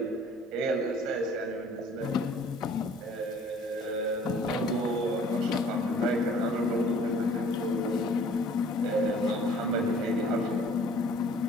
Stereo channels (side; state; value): both; normal; correlation 0.53